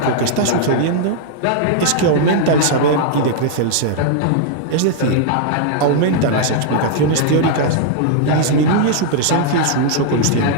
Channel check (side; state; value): both; different; correlation -0.01